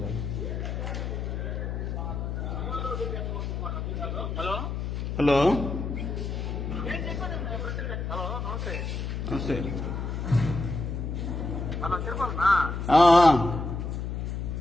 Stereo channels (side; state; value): left; noise; hum, 3 dB below the sound